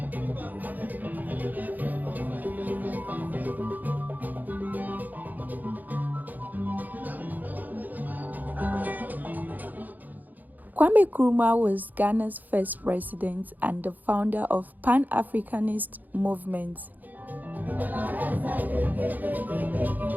Kwame Nkrumah was Ghana's first president and the founder of Pan-Africanist movement.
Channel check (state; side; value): late; left; 0.083 ms